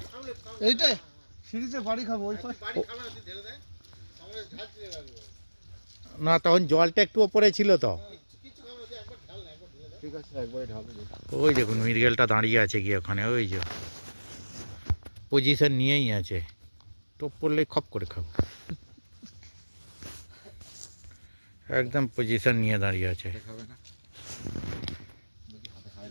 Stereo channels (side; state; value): both; inverted; correlation -1.00